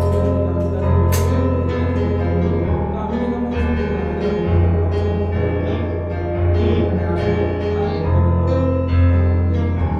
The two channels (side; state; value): both; identical; correlation 1.00